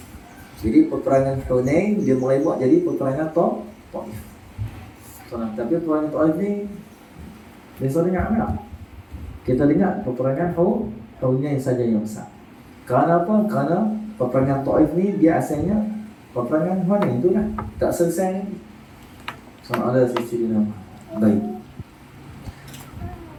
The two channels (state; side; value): identical; both; correlation 1.00